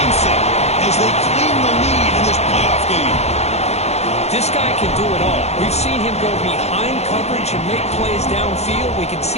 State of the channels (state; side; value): late; right; 0.31 ms